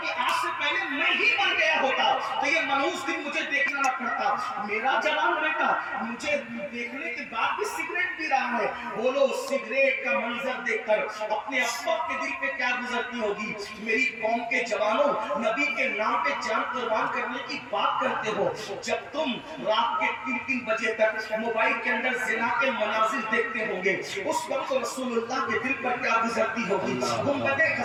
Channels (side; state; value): both; identical; correlation 1.00